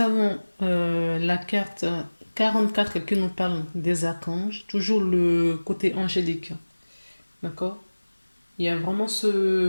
la carte 44 qui nous parle des archanges, toujours le côté angélique. D'accord? Il y a vraiment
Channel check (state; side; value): inverted; both; correlation -1.00